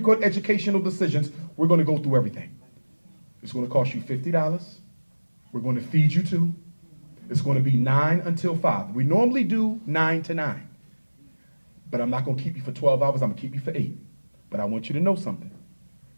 Court educational decisions. We're going to go through everything. It's going to cost you $50. We're going to feed you too. It's going to be 9 until 5. We normally do 9 to 9. But I'm not going to keep you for 12 hours. I'm going to keep you for 8. But I want you to know something.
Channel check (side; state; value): both; inverted; correlation -1.00